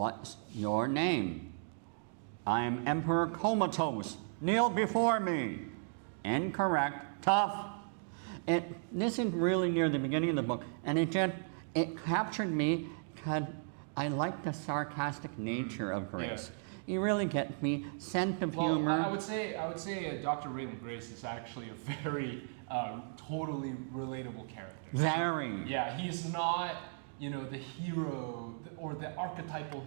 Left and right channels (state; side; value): silent; left; digital silence